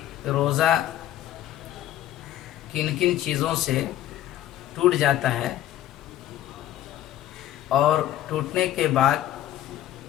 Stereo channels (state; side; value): quieter; right; 12.9 dB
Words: روزہ کن کن چیزوں سے ٹوٹ جاتا ہے اور ٹوٹنے کے بعد